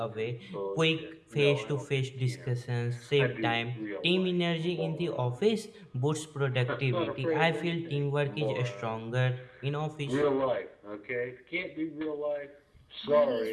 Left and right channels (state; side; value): identical; both; correlation 1.00